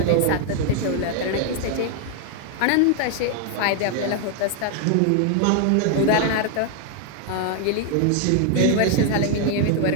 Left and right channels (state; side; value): different; both; correlation 0.00